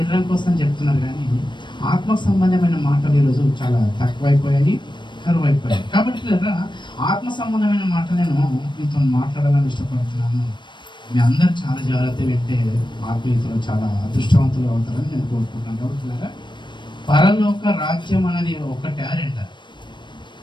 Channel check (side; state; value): right; late; 0.22 ms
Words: కోసం చెప్తున్నారు, కానీ ఆత్మకు సంబంధమైన మాటలు ఈరోజు చాలా తక్కువైపోయాయి, కరువైపోయాయి. కాబట్టి ఆత్మ సంబంధమైన మాటలు నేను మీతో మాట్లాడాలని ఇష్టపడుతున్నాను. మీ అందరూ చాలా జాగ్రత్త వింటే ఆత్మీయతలో చాలా అదృష్టవంతులు అవుతారని నేను కోరుకుంటున్నాను. కాబట్టి పరలోక రాజ్యం అనేది ఒకటే రెండ.